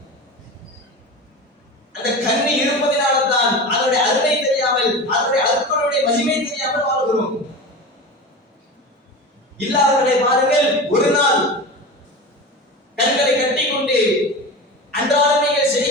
அந்த கண் இருப்பதினால்தான் அதனுடைய அருமை தெரியாமல், அதனுடைய அற்புடைய மகிமை தெரியாமல் வாழ்கிறோம். இல்லாதவர்களை பாருங்கள், ஒரு நாள் கண்களை கட்டிக்கொண்டு அன்றாடம் நீங்கள்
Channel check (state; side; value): normal; both; correlation 0.29